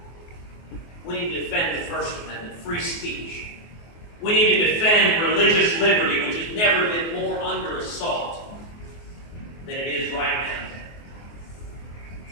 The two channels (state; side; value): late; right; 24 ms